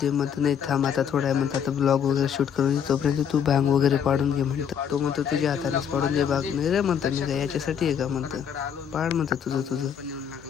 म्हणतो नाही थांब आता थोडा आहे, म्हणतो आता ब्लॉग वगैरे शूट करून तोपर्यंत तू भांग वगैरे पाडून घे म्हणतो. तो म्हणतो तुझ्या हातानेच पाडून दे भाग. नाही रे म्हणतात, मी काय याच्यासाठी आहे का म्हणतं, पाड म्हणतात तुझं.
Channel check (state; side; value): quieter; right; 8.1 dB